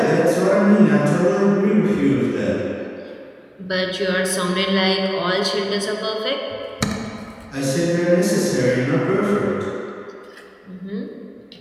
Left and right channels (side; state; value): both; identical; correlation 1.00